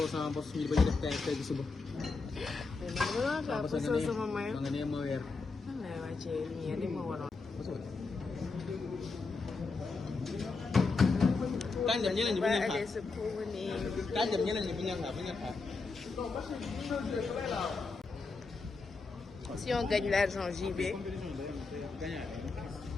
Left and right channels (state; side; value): quieter; right; 4.1 dB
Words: sama bos ñu bañ a def tey tey suba. parce que sama mayo. ma nga nee ma weer. man lay wàccee lumière li ma waroon. Tànjam ñeneen ñi bu ñu xaar sa promener. tànjam ñeneen ñi bu ñu xaar bu ñu xaar. Si on gagne l'argent JB.